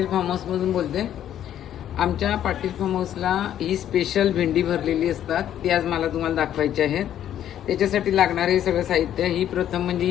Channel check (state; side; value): quieter; right; 10.9 dB